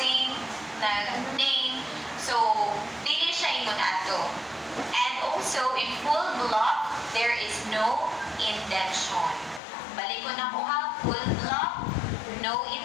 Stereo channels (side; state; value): right; drops out; at 9.6 s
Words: nag-name. So, dili siya ingon ato. And also, in full block, there is no indention. Balik ko na po ha, full block, no